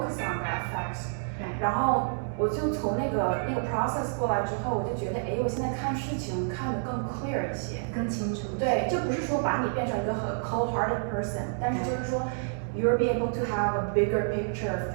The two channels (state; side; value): silent; left; digital silence